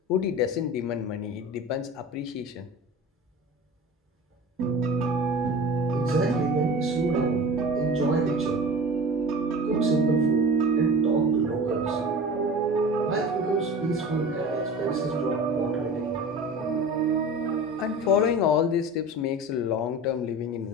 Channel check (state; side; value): normal; both; correlation 0.36